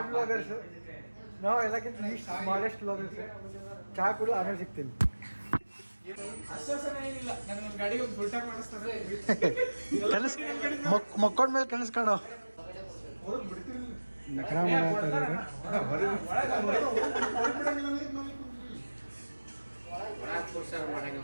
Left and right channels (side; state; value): both; inverted; correlation -1.00